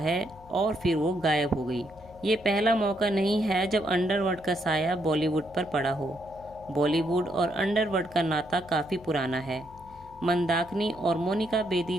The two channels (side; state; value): left; noise; hum, 21 dB below the sound